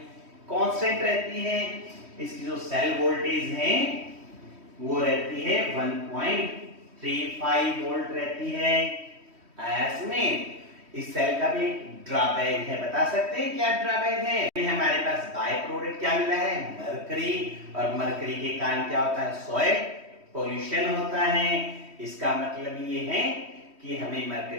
constant रहती है। इसकी जो सेल वोल्टेज है वो रहती है 1.35 वोल्ट रहती है। इसमें इस सेल का भी ड्रॉबैक है। बता सकते हैं क्या ड्रॉबैक है? हमारे पास बाय प्रोडक्ट क्या मिला है? मरकरी। और मरकरी के कारण क्या होता है? सॉइल पोल्यूशन होता है। इसका मतलब ये है कि हमें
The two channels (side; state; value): left; late; 3.1 ms